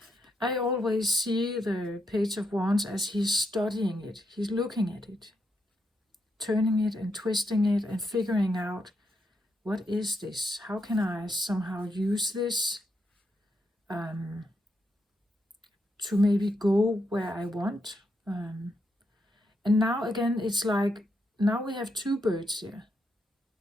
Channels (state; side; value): normal; both; correlation 0.80